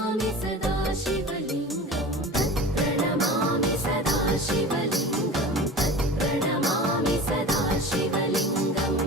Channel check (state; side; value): normal; both; correlation 0.35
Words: सदा शिवलिङ्गं तत्प्रणमामि सदा शिवलिङ्गं तत्प्रणमामि सदा शिवलिङ्गं